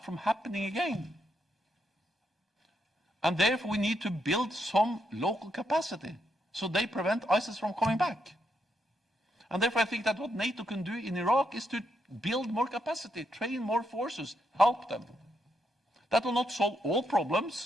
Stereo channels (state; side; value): normal; both; correlation 0.80